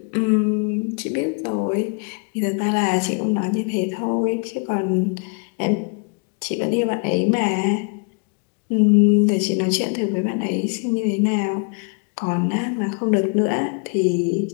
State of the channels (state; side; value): quieter; right; 37.1 dB